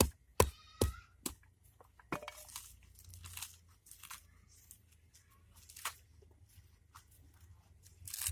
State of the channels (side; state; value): both; identical; correlation 1.00